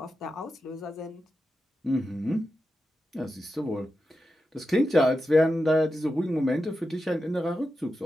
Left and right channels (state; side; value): normal; both; correlation 0.90